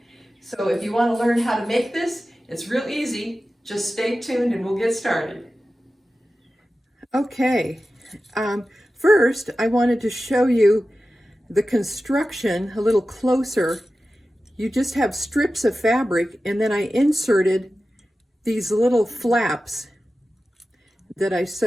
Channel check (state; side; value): normal; both; correlation 0.94